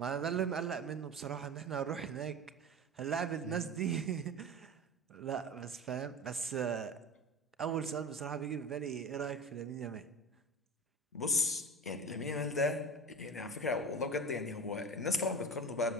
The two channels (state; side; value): normal; both; correlation 0.31